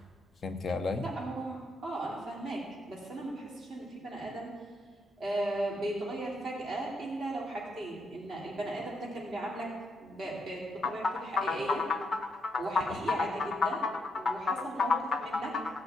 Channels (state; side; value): normal; both; correlation 0.78